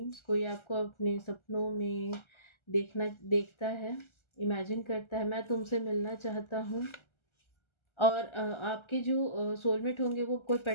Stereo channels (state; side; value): late; right; 1.3 ms